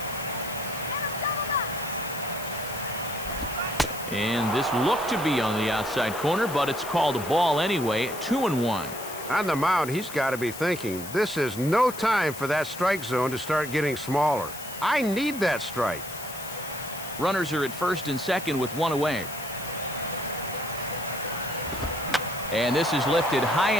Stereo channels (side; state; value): left; noise; hiss, 12 dB below the sound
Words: And this looked to be on the outside corner, but it's called a ball anyway, 2-1. On the mound, he's got to be thinking, this is no time for that strike zone to start getting smaller. I need that strike. Runners are at first and second with 1 away. And this is lifted high